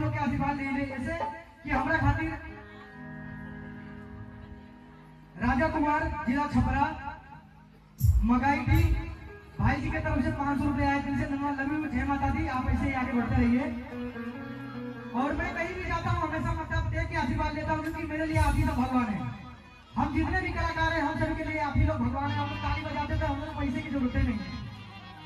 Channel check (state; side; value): identical; both; correlation 1.00